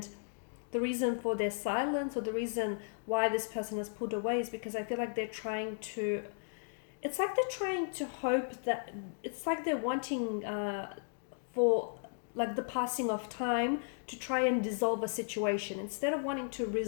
the reason for their silence or the reason why this person has pulled away is because I feel like they're trying to, it's like they're trying to hope that, it's like they're wanting for like the passing of time to try and dissolve a situation instead of wanting to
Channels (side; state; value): right; silent; digital silence